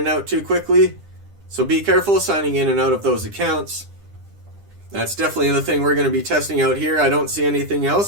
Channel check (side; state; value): left; late; 10 ms